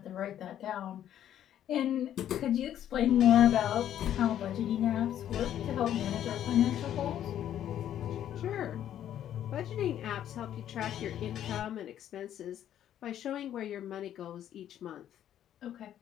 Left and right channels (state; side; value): quieter; right; 10.9 dB